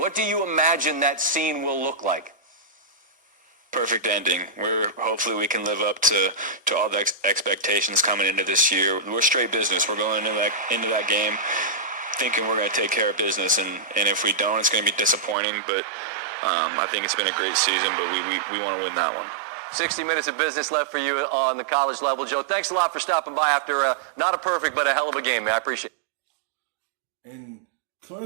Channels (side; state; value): left; drops out; at 15.4 s